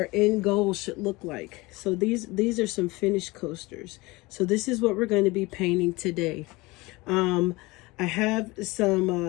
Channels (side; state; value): right; quieter; 22.7 dB